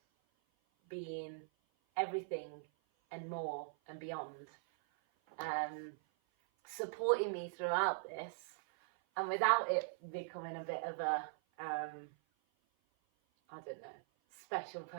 been everything and more and beyond, supporting me throughout this, and without it becoming a bit of a I don't know, special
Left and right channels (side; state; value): left; silent; 50 dB below the other